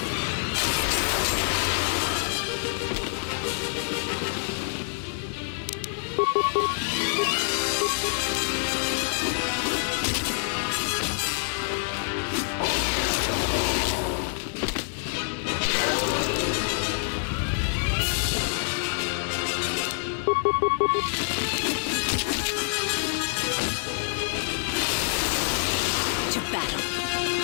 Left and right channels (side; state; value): right; silent; digital silence